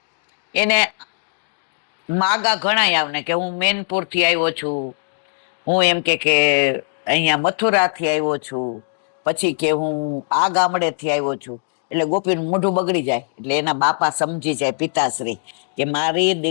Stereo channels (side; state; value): right; silent; digital silence